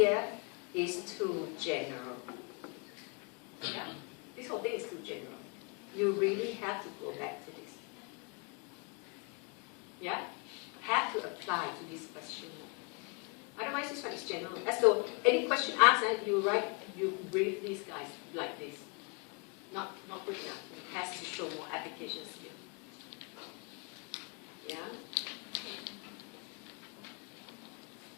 is too general. Yeah? This whole thing is too general. You really have to go back to this. Yeah? Have to apply to this question. Otherwise, this one is general. As though any question asked, you brief these guys like this. Not good enough. It has to show more application skill. Yeah?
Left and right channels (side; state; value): right; quieter; 33.5 dB